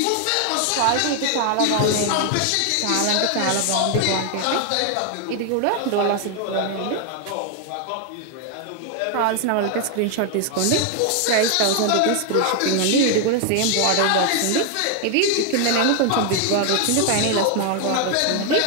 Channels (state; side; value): different; both; correlation 0.00